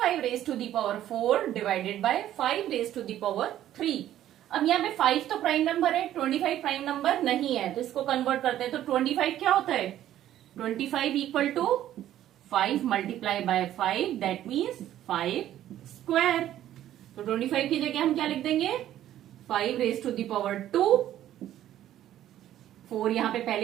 raise to the power 4 divided by 5 raise to the power 3। अब यहाँ पे 5 तो प्राइम नंबर है, 25 प्राइम नंबर नहीं है, तो इसको कन्वर्ट करते हैं। तो 25 क्या होता है, 25 equal to 5 multiply by 5, that means 5 square. तो 25 की जगह हम क्या लिख देंगे, 5 रेज टू दी पावर 2। 4 यहाँ पे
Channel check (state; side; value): quieter; left; 12.3 dB